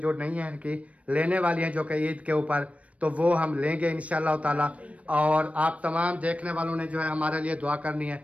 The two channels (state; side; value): late; left; 0.065 ms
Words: नहीं हैं कि लेने वाली हैं जो कि ईद के ऊपर, तो वो हम लेंगे इंशाअल्लाह ताला। और आप तमाम देखने वालों ने जो है हमारे लिए दुआ करनी है